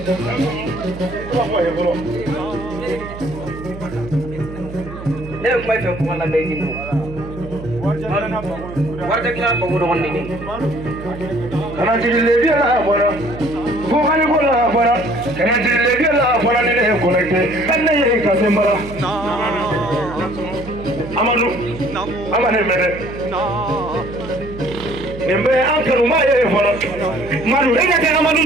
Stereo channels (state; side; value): noise; right; hum, 13 dB below the sound